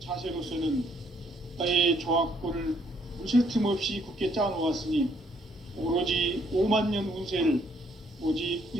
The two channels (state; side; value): normal; both; correlation 0.68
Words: 자세로서는 나의 조화권을 물새틈 없이 굳게 짜놓았으니 오로지 5만 년 운세를 오직